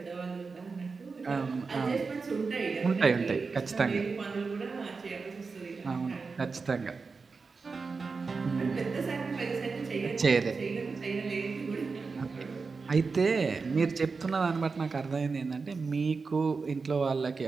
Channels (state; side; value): quieter; left; 4.6 dB